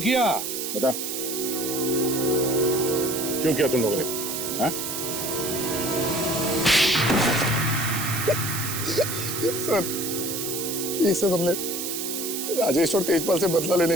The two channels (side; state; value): right; noise; hiss, 4 dB below the sound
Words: बता, क्यों किया तुम लोगों ने? हाँ? सर, ये सब हमने राजेश और तेजपाल से बदला लेने